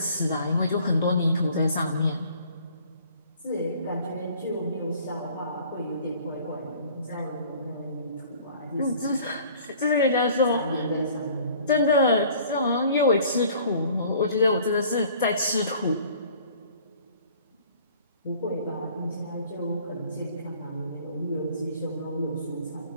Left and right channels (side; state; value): both; inverted; correlation -0.52